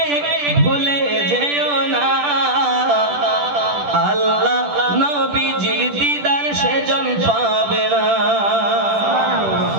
ভুলে যেও না, আল্লাহ নবীজির দিদার সেজন পাবে না।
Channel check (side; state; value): left; late; 10 ms